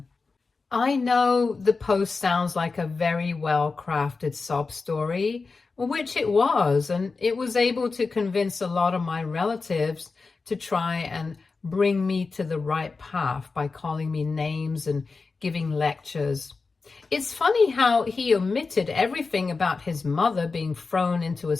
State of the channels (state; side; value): quieter; right; 4.3 dB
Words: I know the post sounds like a very well-crafted sob story, which it was, and it was able to convince a lot of my relatives to try and bring me to the right path by calling me names and giving lectures. It's funny how he omitted everything about his mother being thrown into a